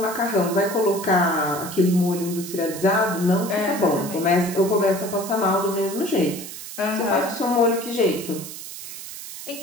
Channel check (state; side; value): noise; right; hiss, 11 dB below the sound